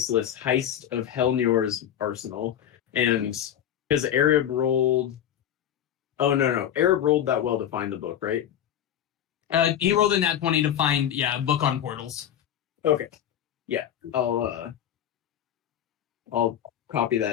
of Helnior's Arsenal. And because Arab rolled Arab rolled that well to find the book, right? He rolled in that 20 to find a book on portals. Okay. Yeah. I'll copy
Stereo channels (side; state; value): right; quieter; 10.2 dB